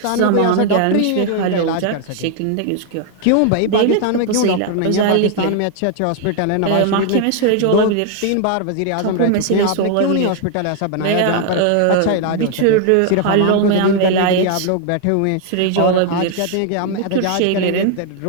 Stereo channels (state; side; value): different; both; correlation 0.00